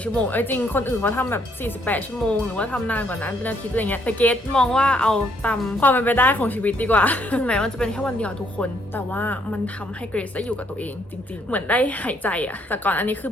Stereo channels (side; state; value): both; normal; correlation 0.69